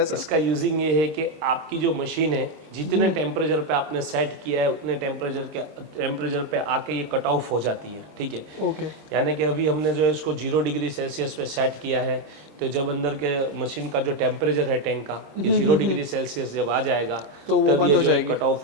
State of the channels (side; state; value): left; late; 26 ms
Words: सर? इसका यूजिंग ये है कि आपकी जो मशीन है, जितने टेम्परेचर पे आपने सेट किया है, उतने टेम्परेचर पे आके ये कट ऑफ हो जाती है, ठीक है। ओके, यानी कि अभी हमने जो है इसको 0 डिग्री सेल्सियस पे सेट किया है, तो जब अंदर के मशीन का जो टेम्परेचर है टैंक का, ये 0 डिग्री सेल्सियस जब आ जाएगा, तो वो बंद हो जाएगी, कट ऑफ